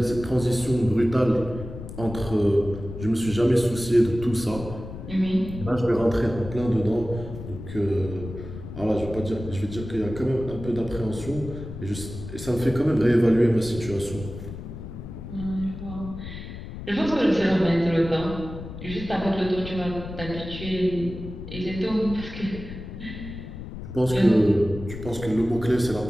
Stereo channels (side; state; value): left; noise; rumble, 10 dB below the sound